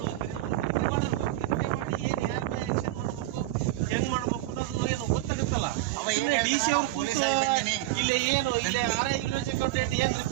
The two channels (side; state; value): left; quieter; 16.1 dB